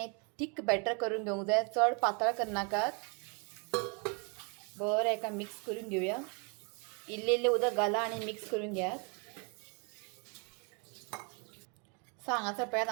थीक बॅटर करून घेवंक जाय, चड पातळ करनाकात. बरें एका मिक्स करून घेवया. इल्लें इल्लें उदक घाला आनी मिक्स करून घेयात. सो हांगासर पळयात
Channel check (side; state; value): left; quieter; 35.6 dB